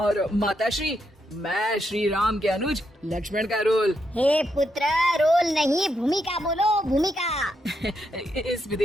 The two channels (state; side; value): normal; both; correlation 0.81